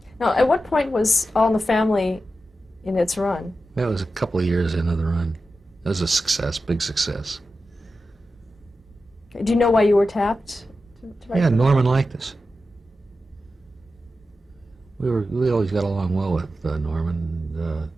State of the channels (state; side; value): normal; both; correlation 0.91